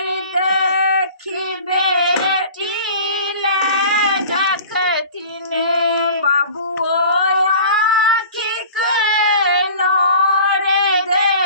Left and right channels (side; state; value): both; inverted; correlation -0.43